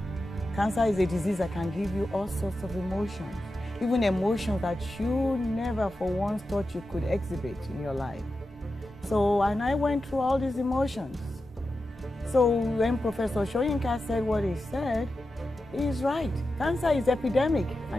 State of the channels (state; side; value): normal; both; correlation 0.91